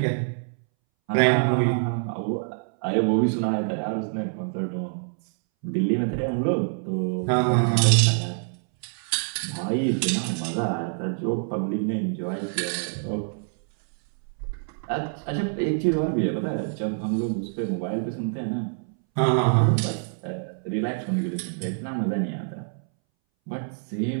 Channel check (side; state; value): left; silent; 61 dB below the other